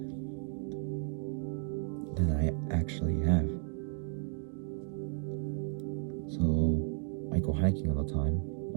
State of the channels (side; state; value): left; silent; digital silence